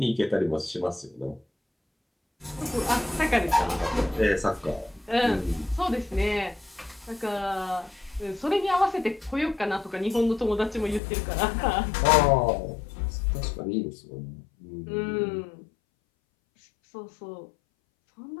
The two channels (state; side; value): drops out; right; at 11.0 s